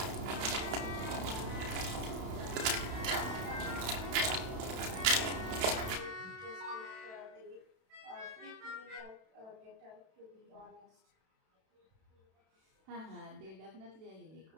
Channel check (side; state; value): left; late; 32 ms